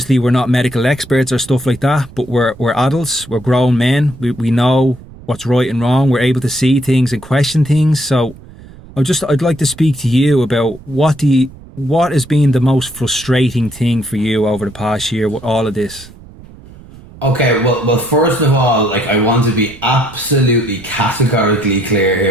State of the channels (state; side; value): noise; right; rumble, 20 dB below the sound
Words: we're not medical experts or stuff like that, but we're adults, we're grown men, we know what's right and wrong, we're able to see things and question things. So I'd like to speak to you about what has been the most frustrating thing for you over the past year with all of this. Okay, well, first of all, like, I want to be absolutely categorically clear